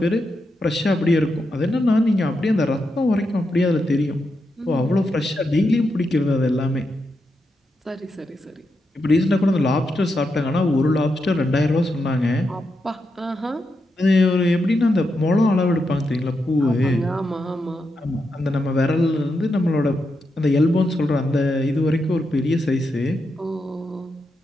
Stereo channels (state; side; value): normal; both; correlation 0.85